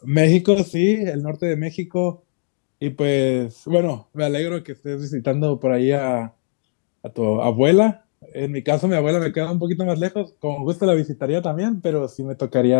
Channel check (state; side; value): silent; right; digital silence